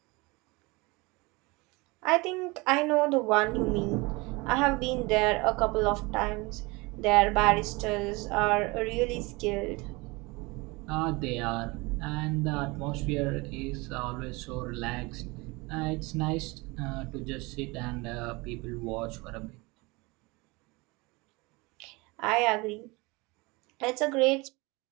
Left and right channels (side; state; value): left; quieter; 25.1 dB